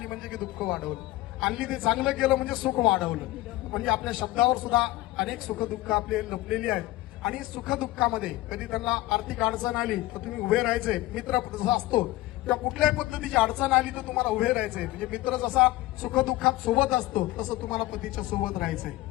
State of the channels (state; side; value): quieter; right; 17.8 dB